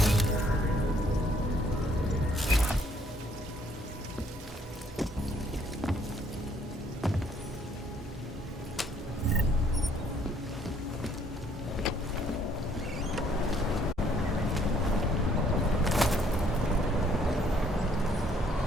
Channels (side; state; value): both; normal; correlation 0.64